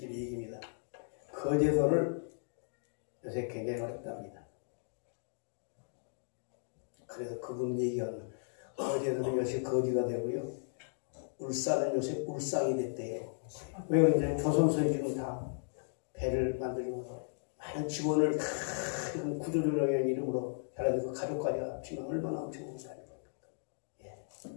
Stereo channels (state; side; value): silent; right; digital silence